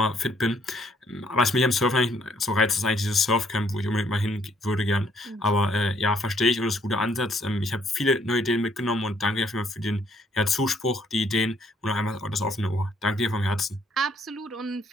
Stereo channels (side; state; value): both; normal; correlation 0.67